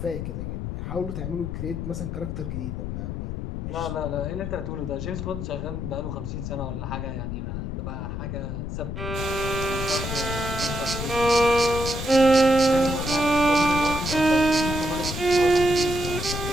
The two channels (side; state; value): left; noise; rumble, 5 dB below the sound